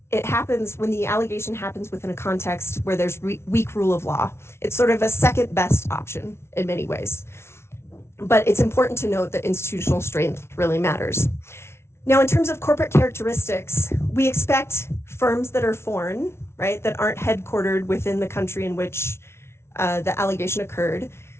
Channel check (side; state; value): right; late; 0.12 ms